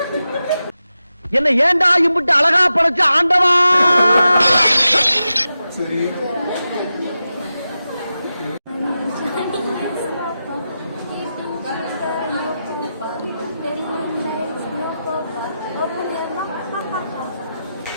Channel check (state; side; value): inverted; both; correlation -0.91